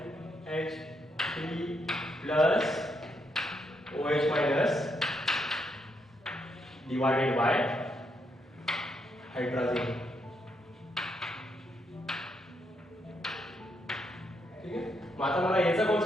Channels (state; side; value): normal; both; correlation 0.78